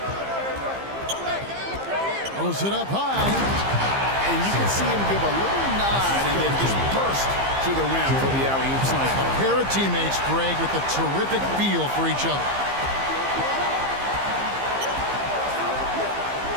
Throws it up high. And you can see him give a little nod and then just burst to the rim for the alley-oop slam. A pair of teammates, Greg, with a terrific feel for each other.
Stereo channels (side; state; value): left; late; 15 ms